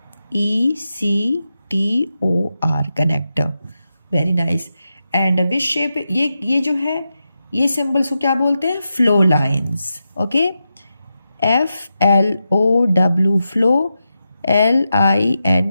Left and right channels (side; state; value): both; inverted; correlation -0.89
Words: connector, very nice. And which shape, ये जो है ये सिंबल्स को क्या बोलते हैं, flow lines. Okay, FLOW, flow,